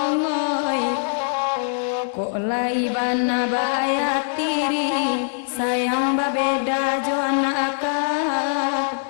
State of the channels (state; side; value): silent; right; digital silence